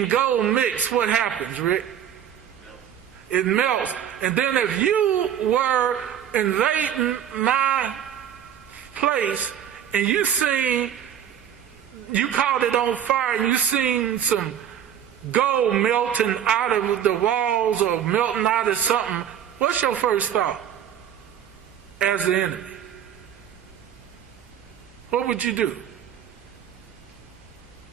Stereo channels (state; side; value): quieter; left; 9.7 dB